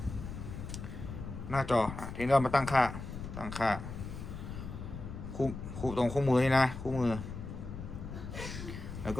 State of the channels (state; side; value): noise; left; rumble, 8 dB below the sound